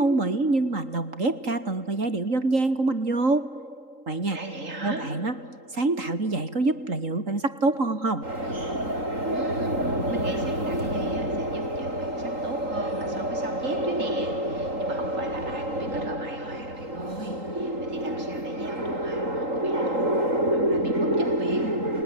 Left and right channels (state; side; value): late; left; 3.8 ms